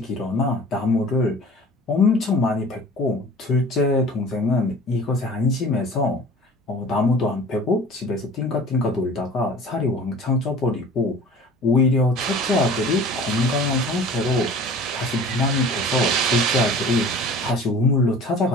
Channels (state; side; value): normal; both; correlation 0.44